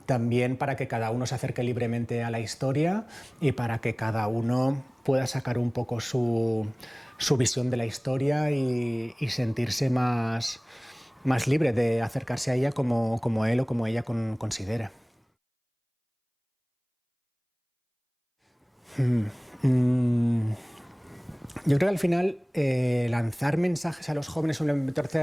también para que cada uno se acerque libremente a la historia y para que cada uno pueda sacar un poco su visión de la historia y sentirse más libre de acercarse a ella como él o como ella considere. Yo creo que al final lanzar mensajes a los jóvenes sobre la importancia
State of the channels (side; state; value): both; identical; correlation 1.00